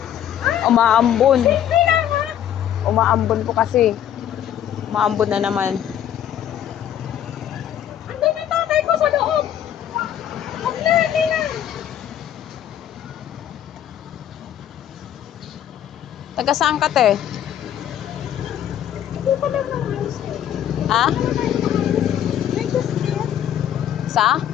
Umaambon. Umaambon po kasi. Umaambon na naman. Andun yung tatay ko sa loob. Huwag na, hindi na. Taga saan ka, te? Hindi pa lang naman. Ha? May just there. Sa?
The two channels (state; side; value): quieter; right; 10.5 dB